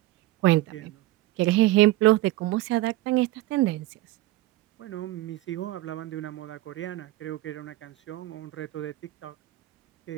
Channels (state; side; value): quieter; left; 17.3 dB